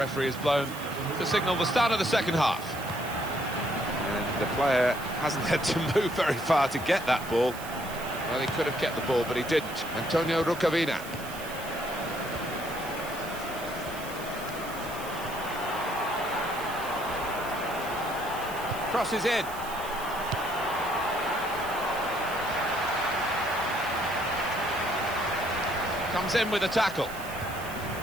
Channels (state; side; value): noise; right; hiss, 14 dB below the sound